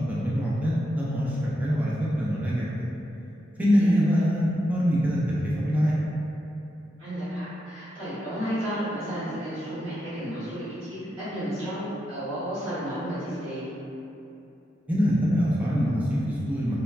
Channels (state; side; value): normal; both; correlation 0.86